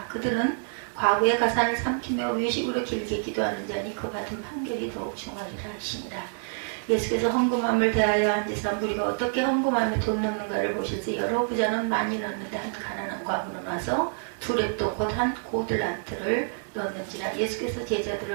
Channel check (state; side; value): silent; left; 60 dB below the other